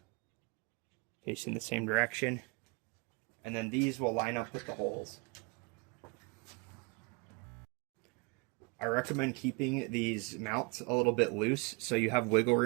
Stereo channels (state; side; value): quieter; left; 30.2 dB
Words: facing the same direction, and then these will line up with the holes. I recommend keeping these mounts a little bit loose so you have wiggle